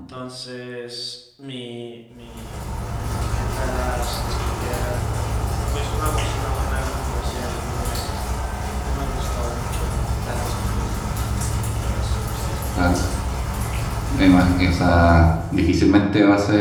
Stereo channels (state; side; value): identical; both; correlation 1.00